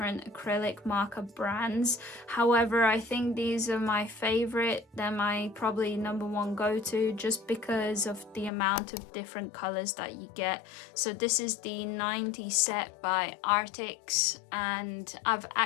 acrylic marker brands. However, I think these are my favorite. They're my probably number 1 go-to, just because of the amount of different colors that you get. So this is the 90 set by Artix, and I've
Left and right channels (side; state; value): right; drops out; at 8.5 s